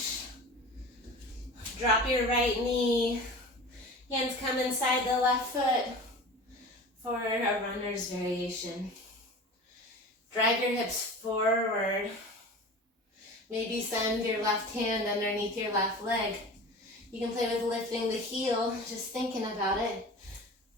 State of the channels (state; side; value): normal; both; correlation 0.36